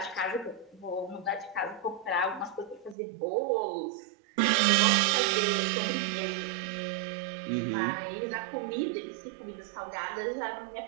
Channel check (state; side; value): drops out; left; at 3.0 s